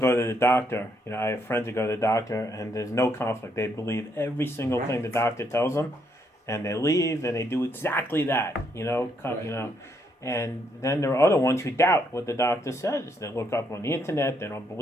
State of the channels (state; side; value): normal; both; correlation 0.74